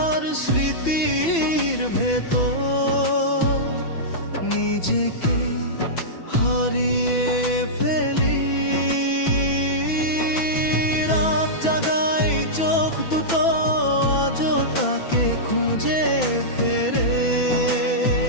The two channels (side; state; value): right; late; 6.0 ms